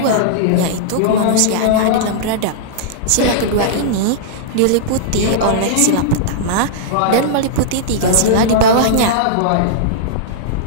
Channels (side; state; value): both; different; correlation -0.02